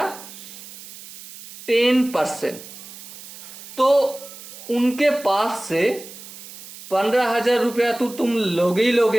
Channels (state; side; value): noise; right; hiss, 16 dB below the sound